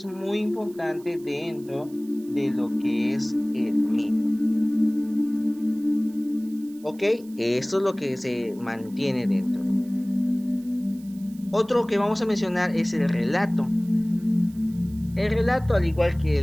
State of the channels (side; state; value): right; noise; hiss, 26 dB below the sound